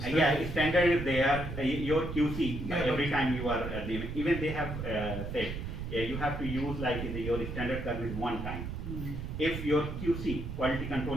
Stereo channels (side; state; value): right; noise; rumble, 6 dB below the sound